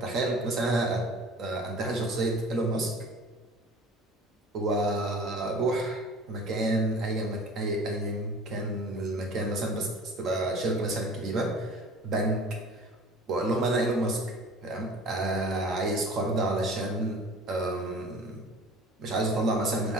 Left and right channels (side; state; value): both; normal; correlation 0.43